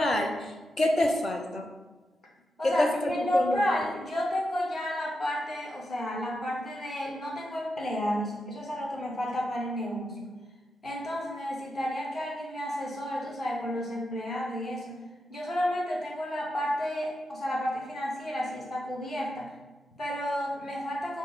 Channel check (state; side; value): normal; both; correlation 0.87